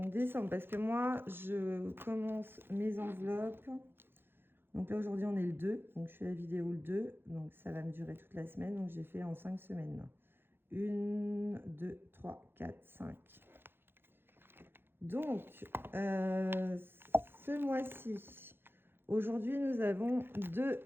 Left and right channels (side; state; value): left; late; 0.10 ms